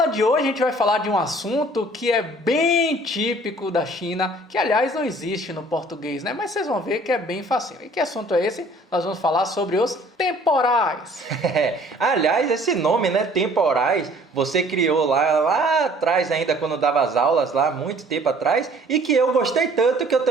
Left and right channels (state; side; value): normal; both; correlation 0.54